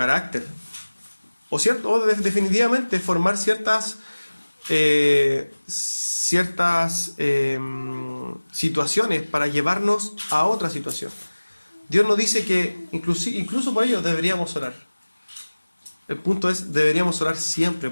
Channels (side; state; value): both; inverted; correlation -1.00